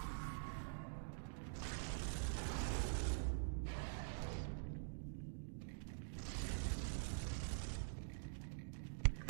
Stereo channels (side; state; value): left; silent; digital silence